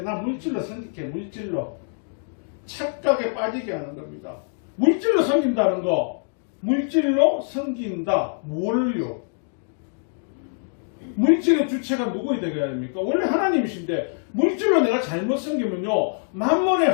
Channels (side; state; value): right; silent; 62 dB below the other